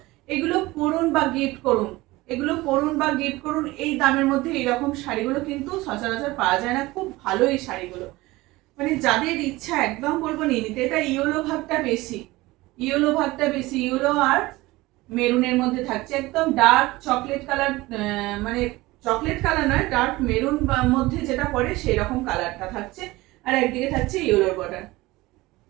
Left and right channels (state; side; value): quieter; left; 19.9 dB